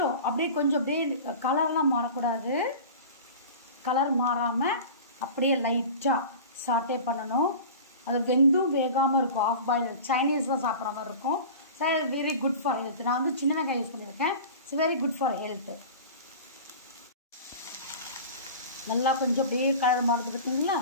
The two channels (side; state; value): both; inverted; correlation -0.36